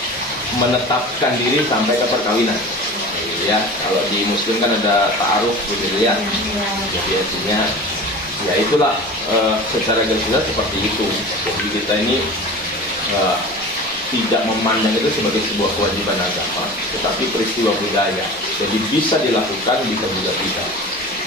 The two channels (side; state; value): both; normal; correlation 0.36